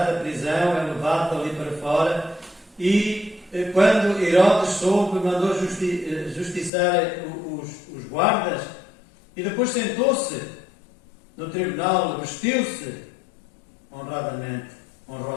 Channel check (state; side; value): drops out; right; at 6.7 s